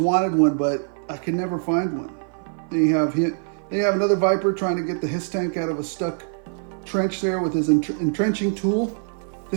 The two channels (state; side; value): silent; left; 55 dB below the other